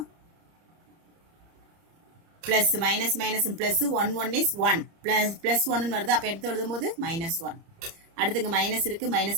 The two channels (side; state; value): left; late; 30 ms